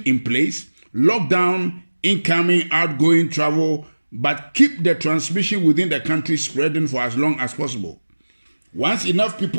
in place, lock down incoming, outgoing travel, but keep the transmission within the country spreading for as long as possible. Once enough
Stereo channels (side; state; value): both; inverted; correlation -1.00